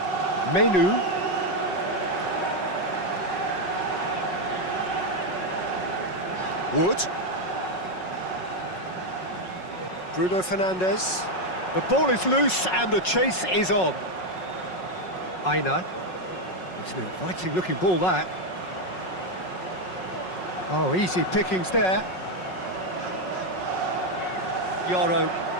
Menu. Wood. Bruno Fernandes. The ball is loose and the chase is on. Aina. It's an inviting looking ball, that. Oh, easy pickings there. Yoro.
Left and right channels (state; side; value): late; right; 5.4 ms